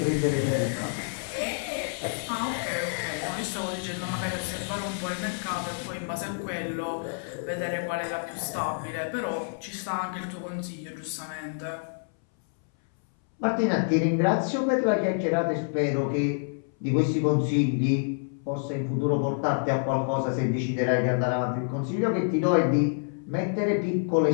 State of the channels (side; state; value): right; silent; 60 dB below the other